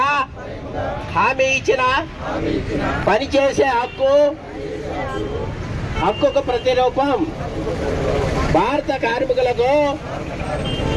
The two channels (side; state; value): both; identical; correlation 1.00